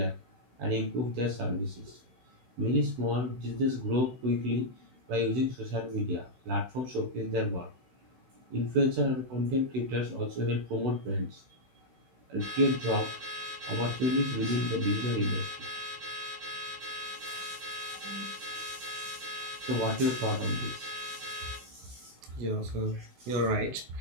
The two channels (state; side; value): late; left; 16 ms